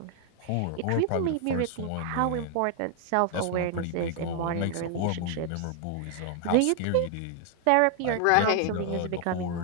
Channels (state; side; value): different; both; correlation 0.00